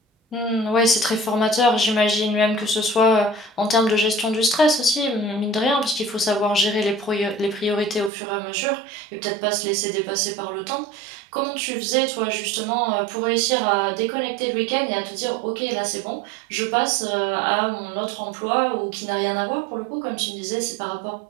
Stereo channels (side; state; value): left; drops out; at 8.1 s